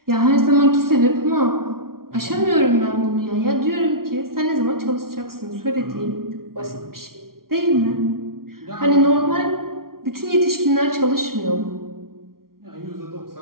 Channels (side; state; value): left; late; 0.93 ms